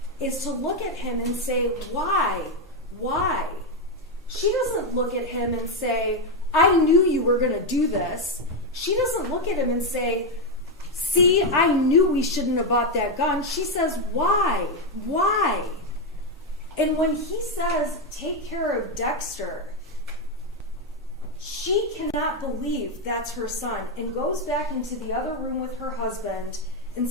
is to look at him and say, why? Why? She doesn't look at him and say, I knew you were going to do this. She doesn't look at him and say, see, I knew we shouldn't have bought that gun. She says, why? Why? And when he says, take care of Dexter, she cannot believe that's her son and goes back into the other room with her husband and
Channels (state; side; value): normal; both; correlation 0.05